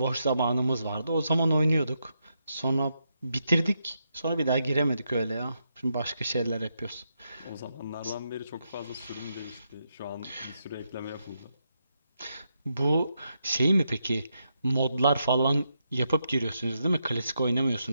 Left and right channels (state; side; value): inverted; both; correlation -0.82